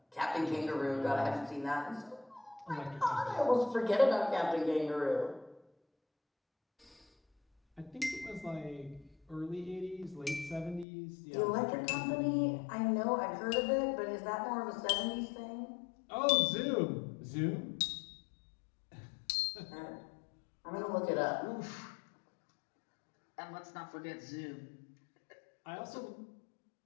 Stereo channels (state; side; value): drops out; right; at 10.9 s